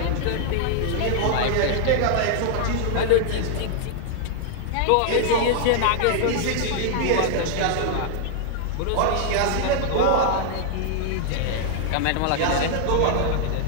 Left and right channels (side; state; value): both; different; correlation -0.01